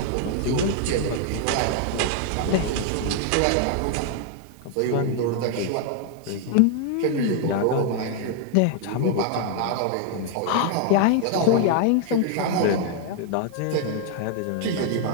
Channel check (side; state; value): both; different; correlation 0.00